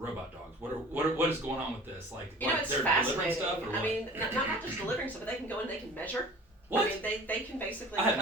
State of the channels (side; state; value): both; normal; correlation 0.44